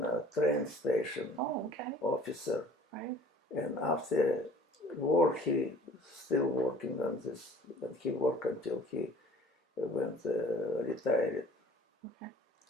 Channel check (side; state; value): both; normal; correlation 0.50